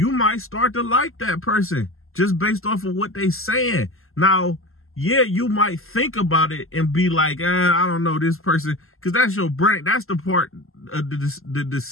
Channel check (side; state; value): right; late; 0.62 ms